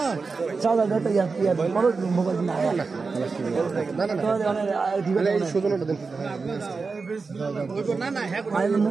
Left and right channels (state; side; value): quieter; left; 4.4 dB